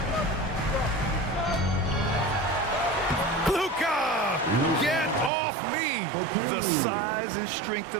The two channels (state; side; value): drops out; left; at 5.3 s